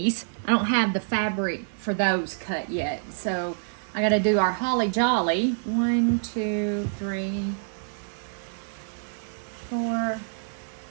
I don't have the fabric for those cut yet, so I got to do our holly jolly. 1, 2, 3, 4,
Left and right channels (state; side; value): silent; left; digital silence